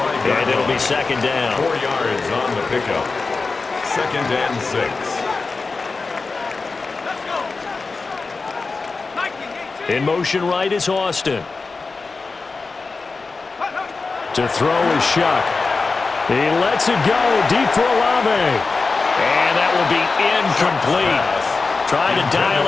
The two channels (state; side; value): quieter; right; 4.1 dB